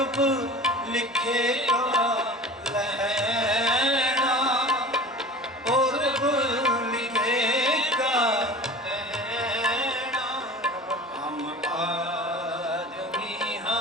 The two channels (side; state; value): both; normal; correlation 0.38